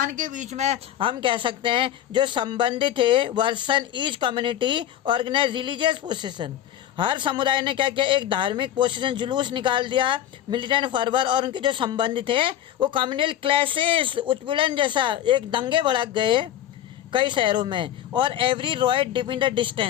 के बीच में हम कह सकते हैं जो संबंधित थे वर्सन each community organise religious procession. हर समुदाय ने क्या किया, एक धार्मिक पोसेशन जुलूस निकाल दिया, मिलिटेंट फर्वर, और उनके जो संबंधी थे वो कम्युनल क्लैशेस उत्पीड़न जैसा एक दंगे भड़क गए कई शहरों में। और every riot depend the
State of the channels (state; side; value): quieter; right; 11.2 dB